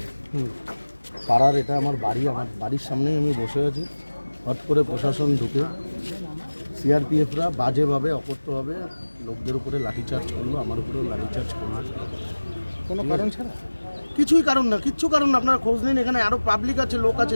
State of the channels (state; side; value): inverted; both; correlation -1.00